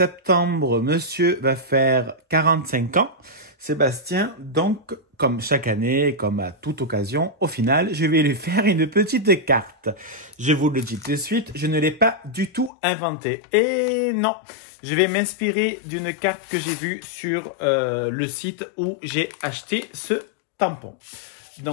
monsieur va faire 45 ans. Sébastien, donc, comme chaque année, comme à toute occasion, au final, je vais lui faire une petite carte. Je vous le dis tout de suite, je ne l'ai pas du tout inventée. Et non, je vais m'inspirer d'une carte que j'ai vue sur le site où j'ai acheté ce tampon.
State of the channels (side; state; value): right; drops out; at 12.7 s